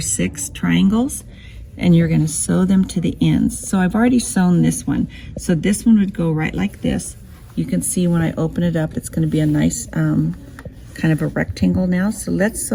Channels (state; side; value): identical; both; correlation 1.00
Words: triangles, and you're going to sew them to the ends. So I've already sewn this one. So this one would go right like this. You can see when I open it up, it's going to be a nice kind of a rectangle now. So let's